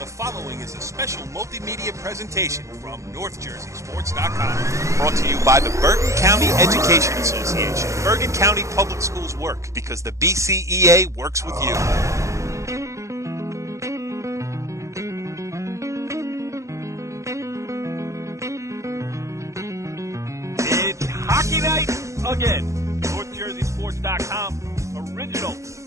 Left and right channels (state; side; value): late; left; 0.15 ms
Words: following is a special multimedia presentation from NorthJerseySports.com. Brought to you by the Bergen County Education Association. Bergen County Public Schools work because the BCEA works with you. It's hockey night again. NorthJerseySports.com original